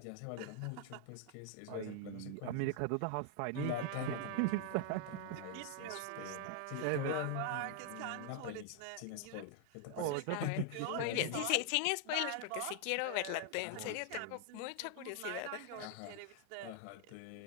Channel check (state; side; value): different; both; correlation 0.00